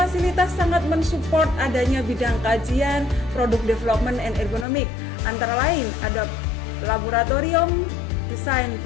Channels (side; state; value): right; drops out; at 4.7 s